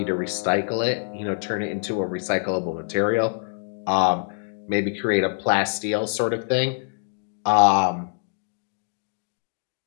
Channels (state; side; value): silent; right; digital silence